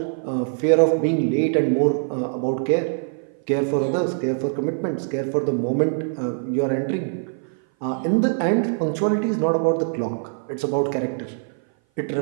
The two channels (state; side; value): silent; left; 57 dB below the other